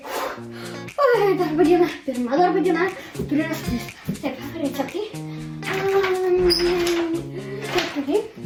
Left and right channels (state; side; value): identical; both; correlation 1.00